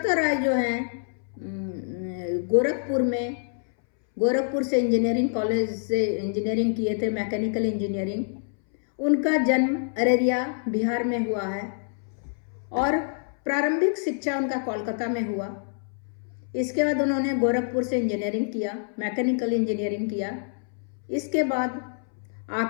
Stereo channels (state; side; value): silent; right; 61 dB below the other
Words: राय जो है गोरखपुर से इंजीनियरिंग कॉलेज से इंजीनियरिंग किए थे, मैकेनिकल इंजीनियरिंग। उनका जन्म अररिया बिहार में हुआ है और प्रारंभिक शिक्षा उनका कोलकाता में हुआ। इसके बाद उन्होंने गोरखपुर से इंजीनियरिंग किया, मैकेनिकल इंजीनियरिंग किया। इसके बाद